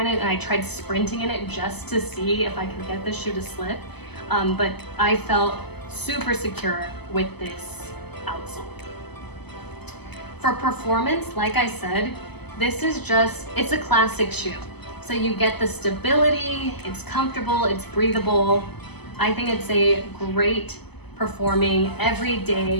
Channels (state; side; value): late; right; 0.99 ms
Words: it, and I tried sprinting in it just to see if I could get the shoe to slip, but I felt super secure with this outsole. For performance, like I said, this is it's a classic shoe. So you get the stability, it's comfortable, it's breathable. I think it's a great performing